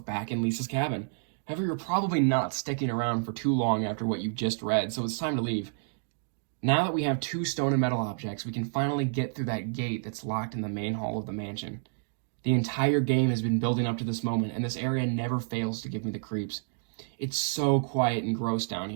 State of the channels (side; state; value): left; silent; digital silence